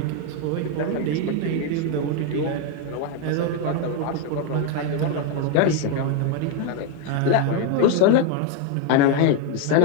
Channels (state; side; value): different; both; correlation 0.01